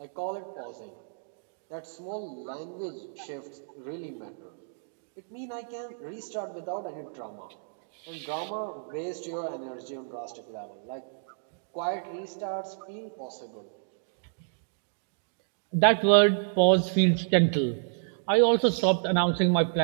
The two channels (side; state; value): left; silent; digital silence